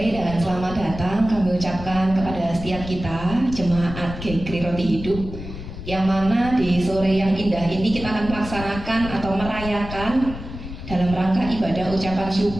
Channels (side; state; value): left; noise; rumble, 10 dB below the sound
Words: dan selamat datang kami ucapkan kepada setiap kita jemaat GKRI Roti Hidup, yang mana di sore yang indah ini kita akan melaksanakan atau merayakan dalam rangka ibadah ucapan